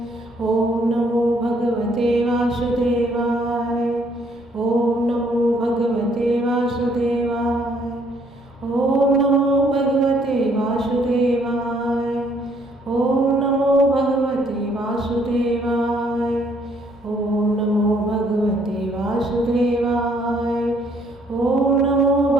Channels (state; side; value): normal; both; correlation 0.66